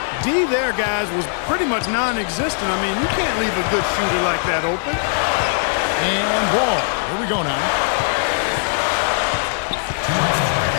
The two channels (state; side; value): silent; right; 66 dB below the other